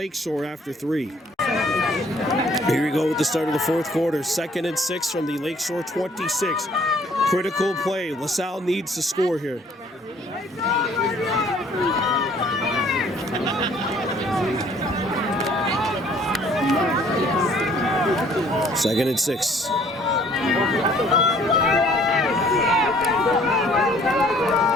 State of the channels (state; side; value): normal; both; correlation 0.59